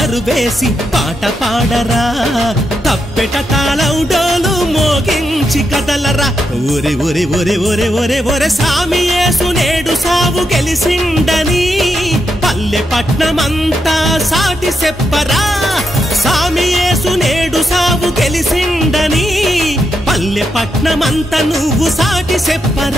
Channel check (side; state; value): both; normal; correlation 0.83